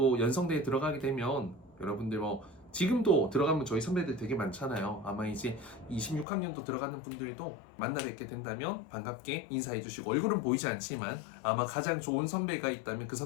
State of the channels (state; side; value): drops out; right; at 6.2 s